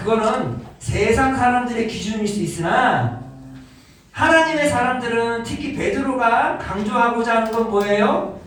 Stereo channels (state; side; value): identical; both; correlation 1.00